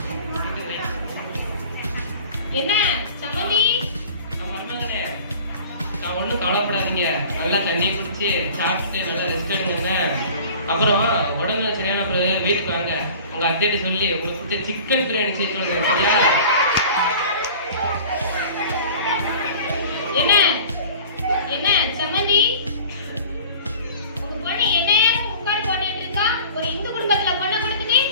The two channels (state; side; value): inverted; both; correlation -0.43